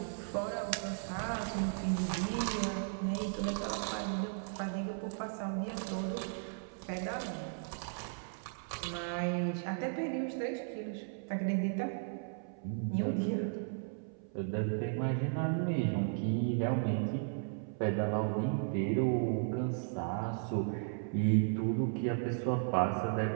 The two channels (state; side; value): silent; left; 54 dB below the other